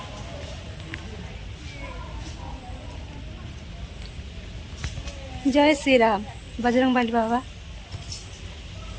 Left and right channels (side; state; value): both; identical; correlation 1.00